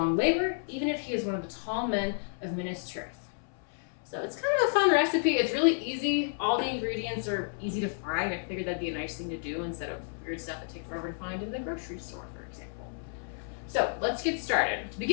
labor, even if he is one of the tall men of Minas Tirith." So it's kind of a fun recipe. It's really easy. All the ingredients are easy to find. I figured that'd be a nice thing to do instead of weird stuff that takes forever to find in the grocery store, for example. So let's get started. To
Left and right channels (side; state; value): right; silent; 57 dB below the other